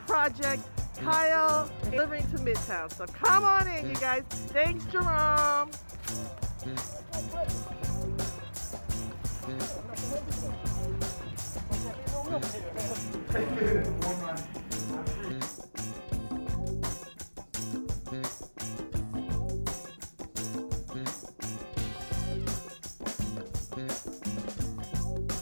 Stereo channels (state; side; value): inverted; both; correlation -1.00